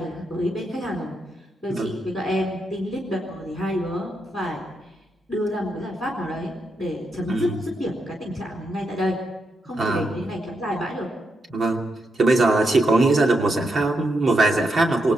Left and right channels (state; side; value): normal; both; correlation 0.82